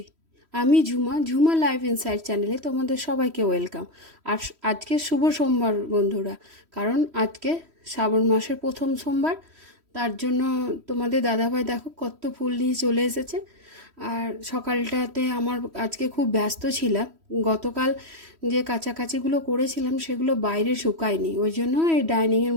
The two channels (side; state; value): left; late; 3.1 ms